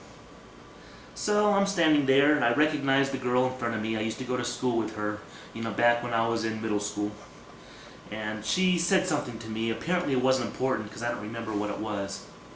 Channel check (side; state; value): both; identical; correlation 1.00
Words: So I'm standing there, and I recognize the girl in front of me. I used to go to school with her, back when I was in middle school. And she said something to me. Apparently it wasn't important because I don't remember what it was.